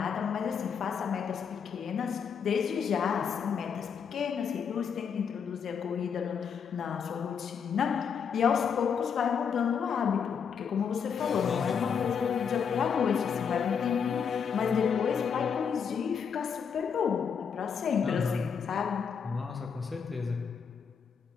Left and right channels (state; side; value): quieter; right; 6.8 dB